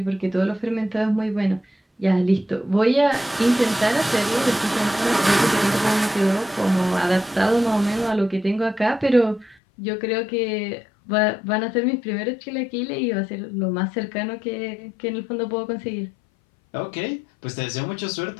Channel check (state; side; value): drops out; right; at 9.6 s